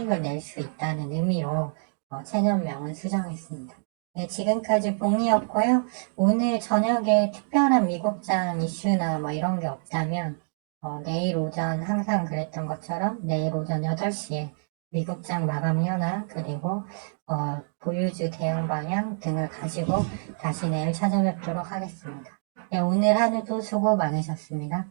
낼 수 있다는 의미로 채널명은 수정했습니다. 네, 지금까지 봉이었고요. 오늘 저녁에 특별한 미국장 이슈나 뭐 이런 게 없다면 내일 오전 항상 그랬던 것처럼 내일 오전 8시에 미국장 마감 현황 그리고 보유주 대응 방향 등을 가지고 다시 내일 찾아뵙도록 하겠습니다. 네, 오늘 하루도 수고 많으셨습니다.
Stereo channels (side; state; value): left; silent; digital silence